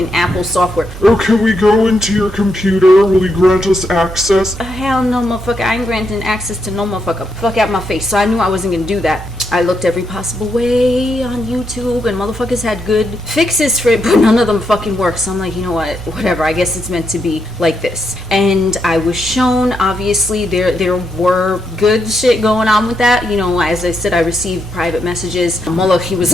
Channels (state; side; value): normal; both; correlation 0.80